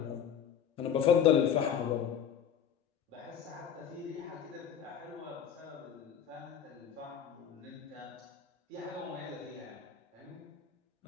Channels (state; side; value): quieter; right; 8.2 dB